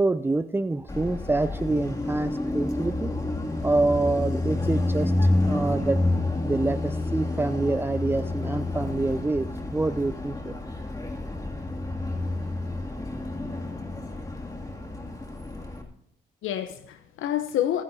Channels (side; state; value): both; normal; correlation 0.88